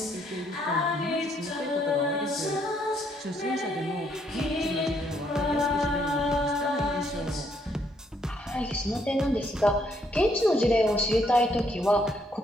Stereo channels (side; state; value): both; normal; correlation 0.71